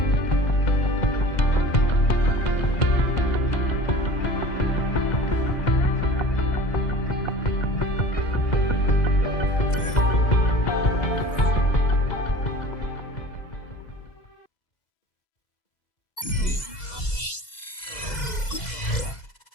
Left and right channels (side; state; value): right; late; 2.0 ms